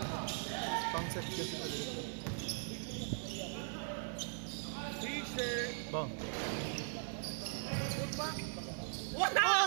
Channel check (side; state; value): left; silent; digital silence